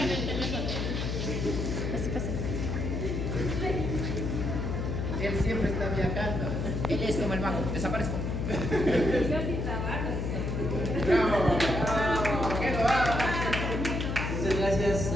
el teléfono. Él siempre está viajando. Él es como el mago. Desaparezco. Yo sí trabajo. Bravo. Que lo abra. Muchas gracias,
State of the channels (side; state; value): left; noise; hum, 1 dB below the sound